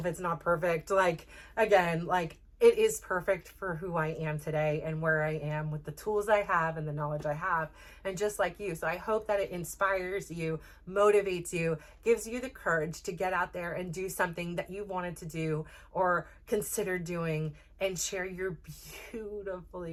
it's not perfect. Like, again, like it is perfect for who I am today and where I am with the tools I have and the knowledge I have, and just like you. So I hope that it inspires you, motivates you, gives you the courage to get out there and do something that you wanted to do or consider doing and share your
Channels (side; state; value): both; identical; correlation 1.00